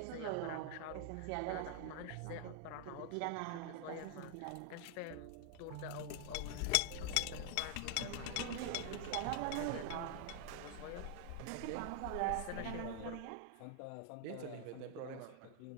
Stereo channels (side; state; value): both; different; correlation 0.00